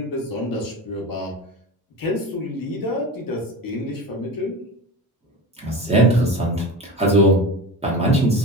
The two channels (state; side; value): normal; both; correlation 0.28